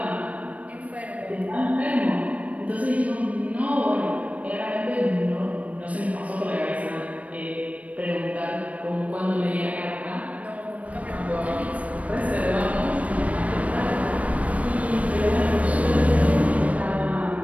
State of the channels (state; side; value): late; left; 0.067 ms